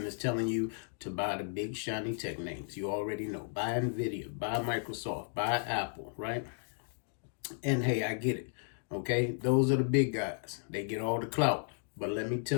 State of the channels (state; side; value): silent; right; digital silence